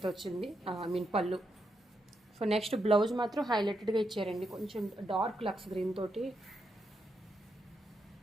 వచ్చింది, పళ్ళు. సో నెక్స్ట్ బ్లౌజ్ మాత్రం హైలైటెడ్గా ఇచ్చారండి, కొంచెం డార్క్ లక్స్ గ్రీన్ తోటి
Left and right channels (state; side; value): normal; both; correlation 0.82